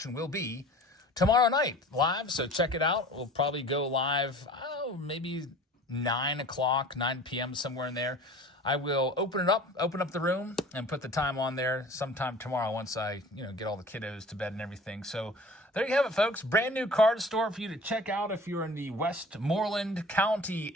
will be tomorrow night live, so check it out. We'll probably go live, maybe 9 p.m., somewhere in there. I will open up the room and put the time on there sometime tomorrow once I, get all the kiddos to bed and everything. So there you have it, folks. Brand new card store for you to check out if you're in the Westmoreland County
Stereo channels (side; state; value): both; normal; correlation 0.43